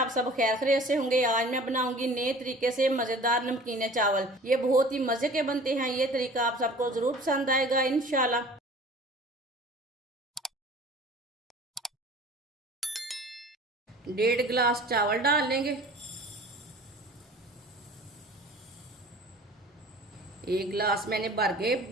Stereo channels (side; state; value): both; normal; correlation 0.45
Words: सब खैर खैरियत से होंगे। आज मैं बनाऊंगी नए तरीके से मज़ेदार नमकीन चावल। ये बहुत ही मज़े के बनते हैं। ये तरीका आप सबको ज़रूर पसंद आएगा इंशाल्लाह। 1.5 गिलास चावल डाल लेंगे। 1 गिलास मैंने भर के